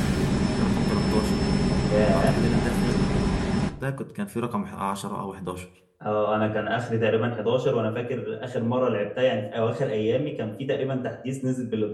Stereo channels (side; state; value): both; identical; correlation 1.00